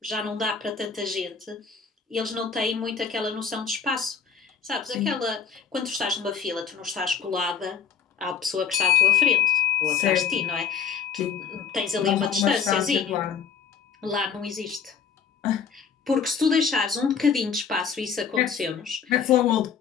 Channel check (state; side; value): quieter; right; 6.7 dB